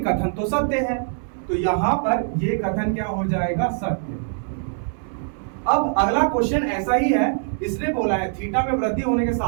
तो सत्य है, तो यहाँ पर ये कथन क्या हो जाएगा, सत्य। अब अगला क्वेश्चन ऐसा ही है, इसने बोला है थीटा में वृद्धि होने के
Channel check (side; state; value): left; silent; digital silence